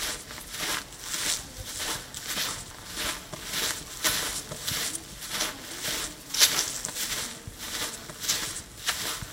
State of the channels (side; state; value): both; identical; correlation 1.00